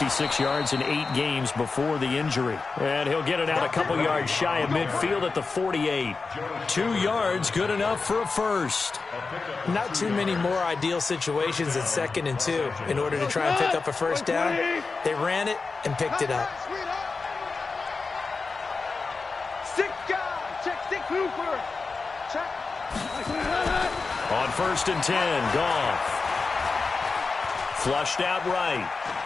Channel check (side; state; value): right; quieter; 4.3 dB